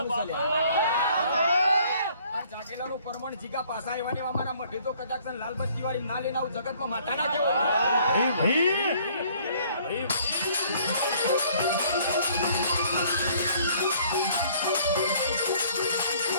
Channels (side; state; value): both; inverted; correlation -0.59